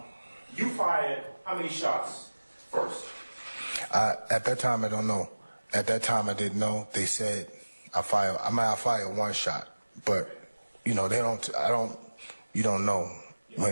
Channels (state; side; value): inverted; both; correlation -1.00